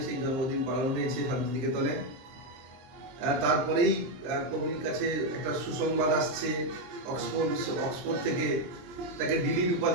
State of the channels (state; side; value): late; left; 23 ms